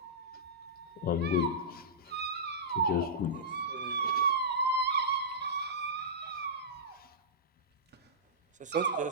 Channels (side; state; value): both; normal; correlation -0.16